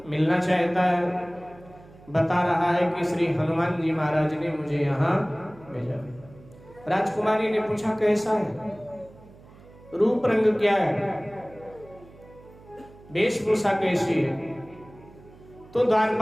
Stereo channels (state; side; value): noise; right; hum, 23 dB below the sound